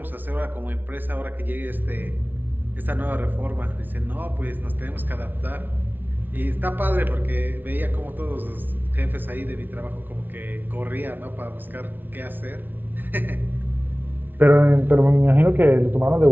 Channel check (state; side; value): late; left; 0.090 ms